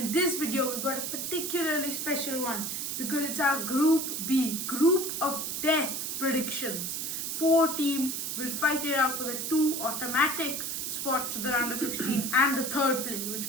this video, we've got a particularly special one because it's our Group B, Group of Death predictions. 4 teams will fight it out for the 2 automatic spots to the round of 16 and the 3rd place,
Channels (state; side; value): noise; right; hiss, 3 dB below the sound